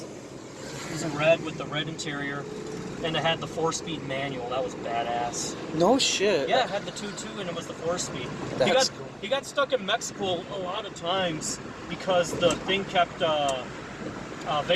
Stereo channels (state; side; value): identical; both; correlation 1.00